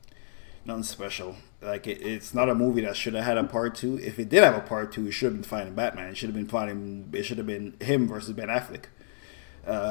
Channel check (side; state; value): right; silent; 59 dB below the other